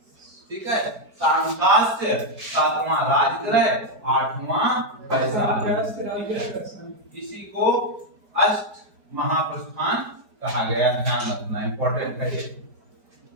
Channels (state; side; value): late; left; 4.8 ms